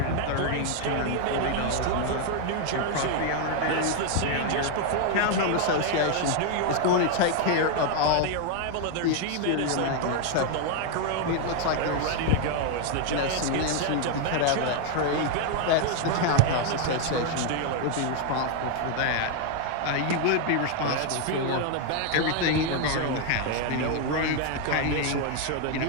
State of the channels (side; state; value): both; different; correlation 0.01